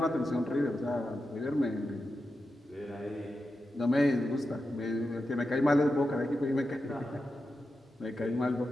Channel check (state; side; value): normal; both; correlation 0.90